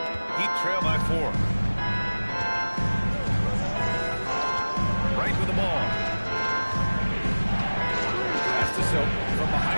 Heat trail by 4. Right with the ball. Pass to Silk from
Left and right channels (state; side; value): inverted; both; correlation -1.00